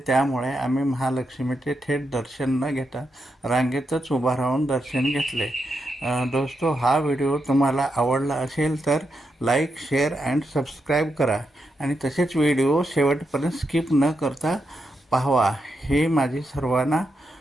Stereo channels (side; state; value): both; normal; correlation 0.84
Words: त्यामुळे आम्ही महालक्ष्मीचे थेट दर्शन न घेता रांगेतच उभा राहून दर्शन घेतले. दोस्तो, हा व्हिडिओ तुम्हाला आवडला असेल तर लाईक, शेअर अँड सबस्क्राईब करा आणि तसेच व्हिडिओ शेवटपर्यंत स्किप न करता पाहावा ही माझी सर्वांना